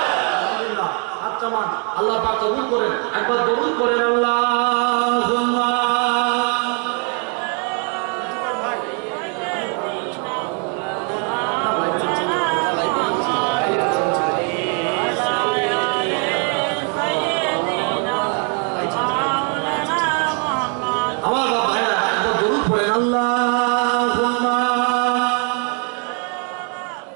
হাতটা মান আল্লাহ পাক কবুল করেন একবার কবুল করেন আল্লাহুম্মা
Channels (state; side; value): quieter; left; 38.6 dB